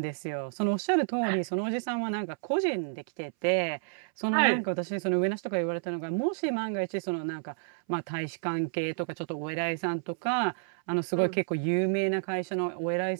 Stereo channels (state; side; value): silent; left; 58 dB below the other